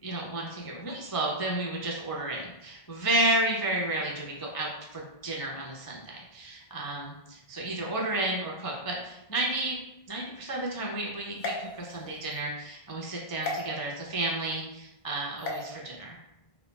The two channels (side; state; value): right; late; 1.6 ms